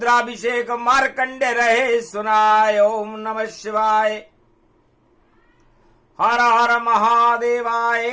मार्कंडे रहे सुनाए। ओम नमः शिवाय हर हर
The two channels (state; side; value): identical; both; correlation 1.00